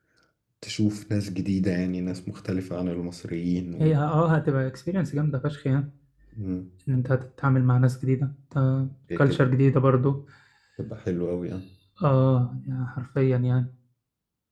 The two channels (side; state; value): both; identical; correlation 1.00